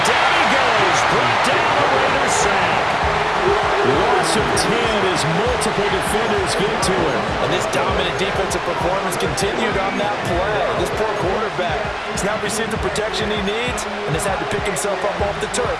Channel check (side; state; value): both; identical; correlation 1.00